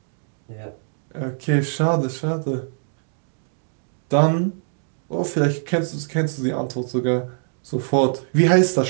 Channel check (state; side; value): silent; left; digital silence